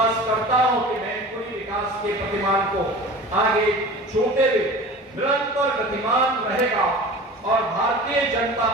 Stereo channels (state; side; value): normal; both; correlation 0.38